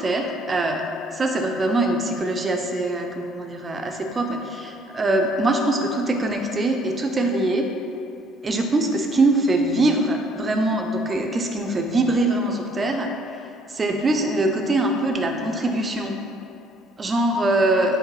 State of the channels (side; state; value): both; normal; correlation 0.63